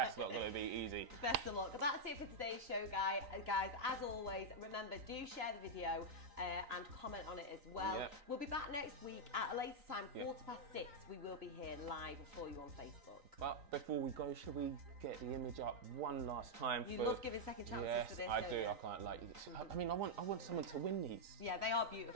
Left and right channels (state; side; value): late; left; 3.9 ms